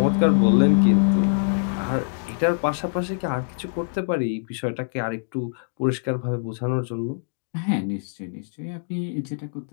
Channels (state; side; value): silent; right; digital silence